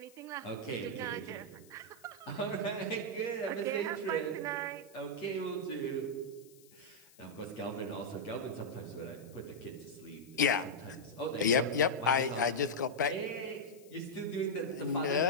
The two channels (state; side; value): noise; left; hiss, 25 dB below the sound